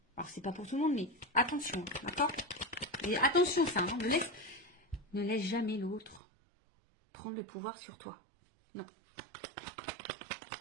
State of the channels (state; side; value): drops out; left; at 6.2 s